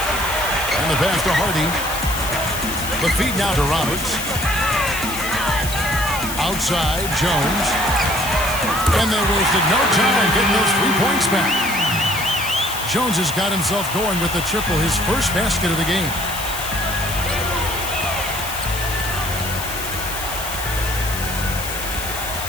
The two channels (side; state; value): left; noise; hiss, 8 dB below the sound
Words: And the pass to Hardy. The feed now to Roberts. Outside, Jones. And they wasted no time getting those 3 points back. Jones has got himself going with the triple, his first basket of the game.